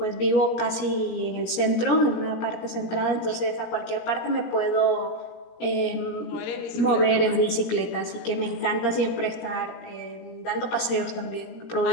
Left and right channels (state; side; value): late; right; 17 ms